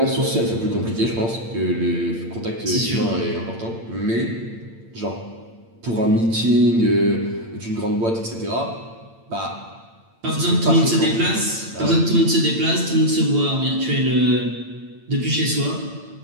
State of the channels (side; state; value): left; late; 8.8 ms